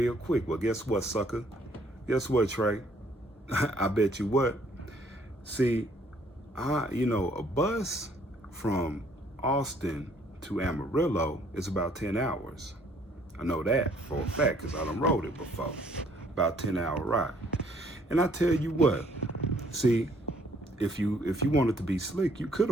quick. Well, guess what, sucker? Guess what, Trey? I bet you what. See, a bus from Austin to Amarillo is about 10 hours. I know that for a fact because I done rode it before. About 10-hour ride. And I tell you what, see, if you wanted to be slick, you could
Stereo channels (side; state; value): both; normal; correlation 0.63